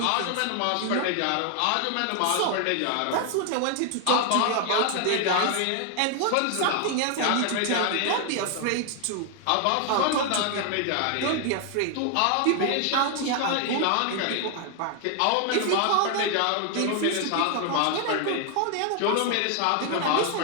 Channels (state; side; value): different; both; correlation 0.00